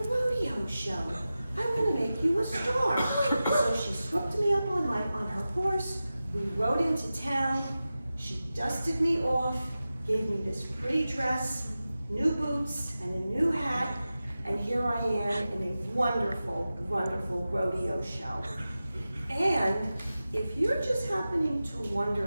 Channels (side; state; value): both; inverted; correlation -0.94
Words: show. I'm gonna make you a star. So she swooped me up on her horse. We rode into town. She dusted me off, gave me this pretty dress, new boots, and a new hat, and here I am in a wonderful, wonderful rodeo show. And if you're just happening to